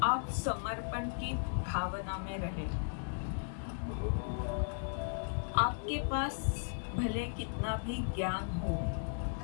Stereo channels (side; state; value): right; silent; digital silence